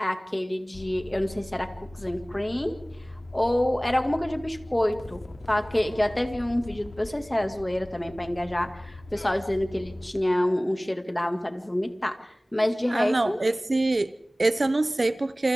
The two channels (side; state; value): both; normal; correlation 0.98